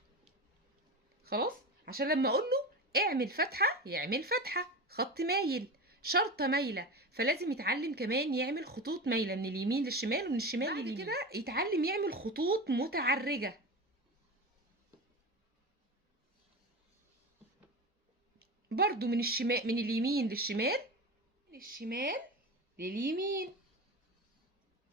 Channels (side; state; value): both; normal; correlation 0.26